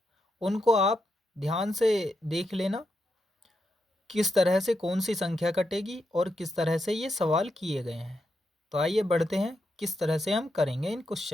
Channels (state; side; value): normal; both; correlation 0.84